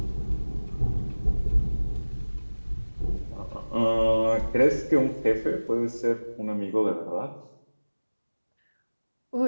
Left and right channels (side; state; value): both; inverted; correlation -1.00